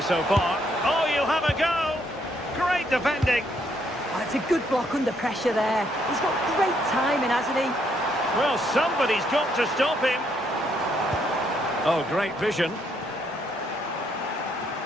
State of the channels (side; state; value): both; normal; correlation 0.72